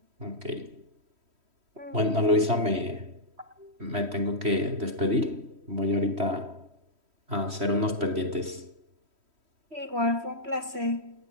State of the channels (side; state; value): left; late; 3.1 ms